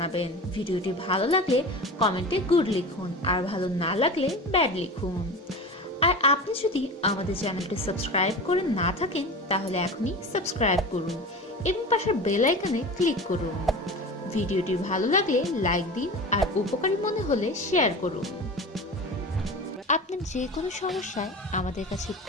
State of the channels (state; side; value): normal; both; correlation 0.32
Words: ভিডিওটি ভালো লাগলে কমেন্টে গুড লিখুন, আর ভালো না লাগলে ব্যাড লিখুন। আর আপনি যদি আমাদের চ্যানেলটি সাবস্ক্রাইব করে না থাকেন তাহলে এখনই সাবস্ক্রাইব করুন এবং পাশের বেল আইকনে ক্লিক করুন। ভিডিওটি ভালো লাগলে লাইক দিন আর উপকারী মনে হলে শেয়ার করুন। আপনি যে কোনো সমস্যায় আমাদের কাছে